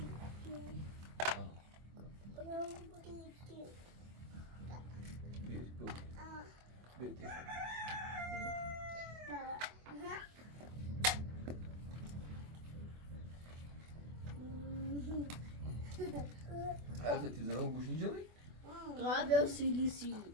بیر عارفة تزرعوا بوش نجري؟ غابة وسيليسي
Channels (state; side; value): late; left; 24 ms